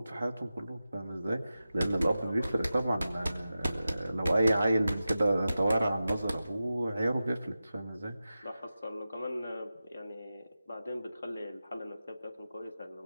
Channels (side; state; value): both; inverted; correlation -0.93